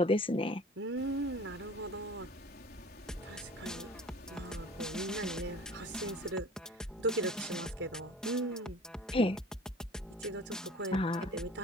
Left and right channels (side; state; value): both; normal; correlation 0.44